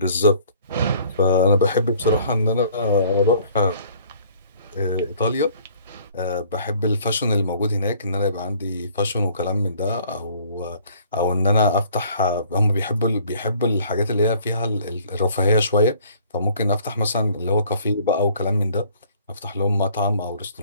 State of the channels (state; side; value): inverted; both; correlation -0.57